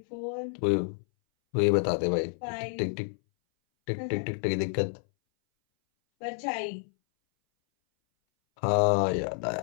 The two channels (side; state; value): right; silent; 59 dB below the other